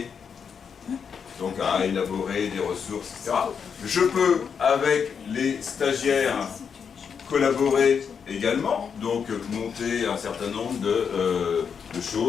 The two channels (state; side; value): quieter; right; 6.7 dB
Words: donc à élaborer des ressources, etc. Je peux, avec les stagiaires, collaborer également, donc monter un certain nombre de